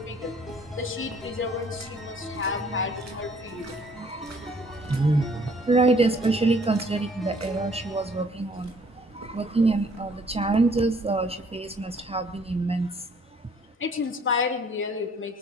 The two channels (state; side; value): normal; both; correlation 0.60